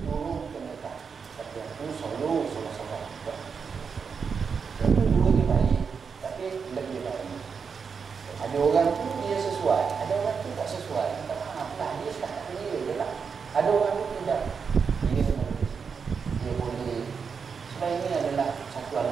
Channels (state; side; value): quieter; left; 5.9 dB